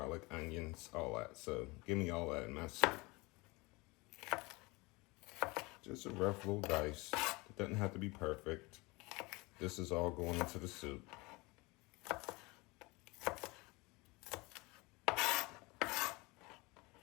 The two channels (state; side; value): quieter; right; 24.6 dB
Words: onions, all that. So give me all that in my soup. Just a rough little dice. It doesn't have to be perfect. This is all going into the soup.